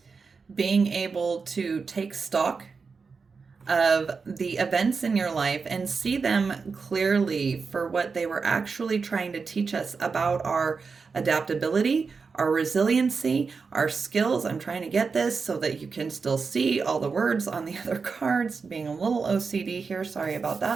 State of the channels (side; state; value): left; quieter; 5.0 dB